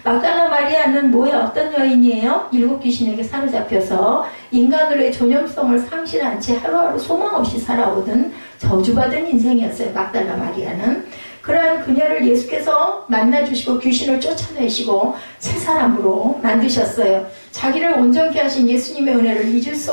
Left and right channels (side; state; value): both; inverted; correlation -1.00